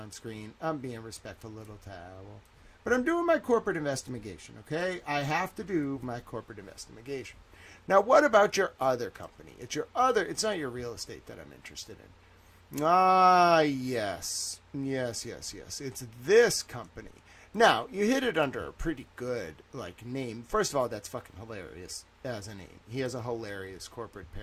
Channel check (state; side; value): identical; both; correlation 1.00